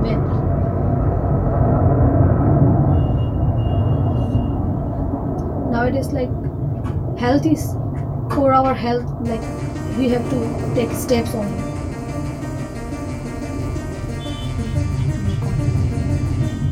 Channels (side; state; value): both; identical; correlation 1.00